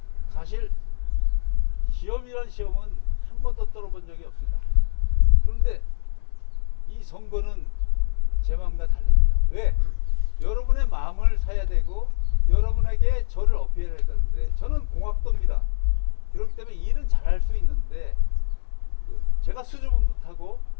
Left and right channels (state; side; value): silent; right; 63 dB below the other